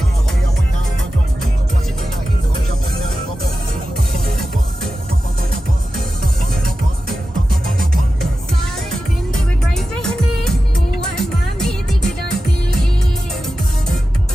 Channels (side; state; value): both; normal; correlation 0.93